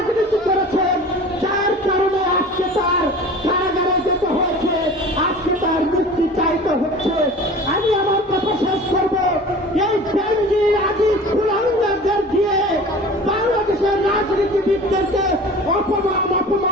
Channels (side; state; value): both; normal; correlation 0.40